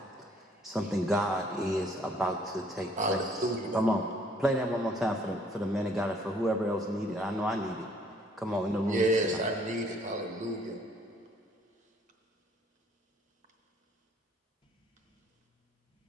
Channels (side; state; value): both; normal; correlation 0.61